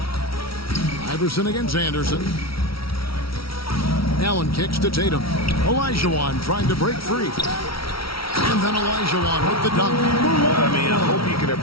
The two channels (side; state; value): right; late; 0.75 ms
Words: Iverson against Anderson. Allen kicks to Tatum. Olajuwon trying to break free. And then Olajuwon with the dunk. I mean, I hope you can